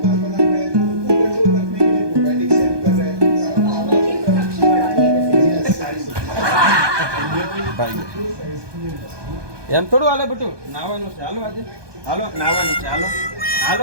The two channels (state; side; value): late; left; 1.2 ms